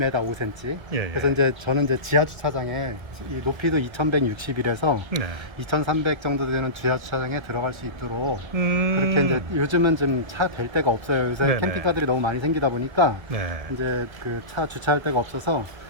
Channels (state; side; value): late; left; 1.8 ms